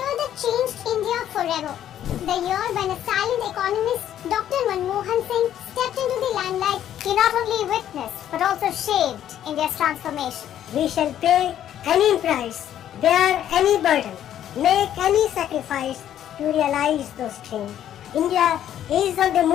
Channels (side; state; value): right; quieter; 10.9 dB